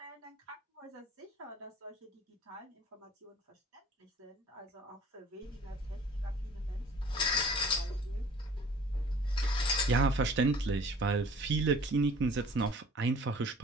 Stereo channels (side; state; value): both; normal; correlation 0.49